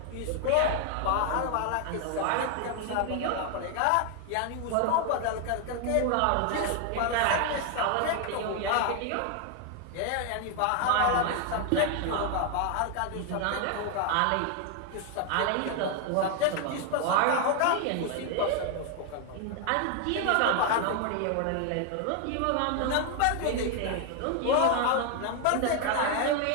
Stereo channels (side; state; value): both; different; correlation 0.00